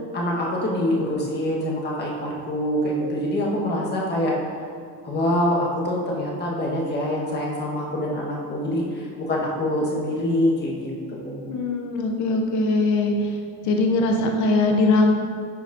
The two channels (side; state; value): both; normal; correlation 0.40